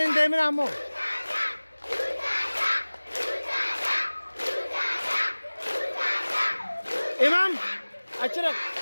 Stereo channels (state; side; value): inverted; both; correlation -1.00